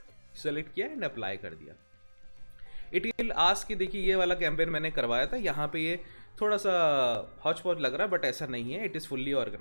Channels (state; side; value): inverted; both; correlation -1.00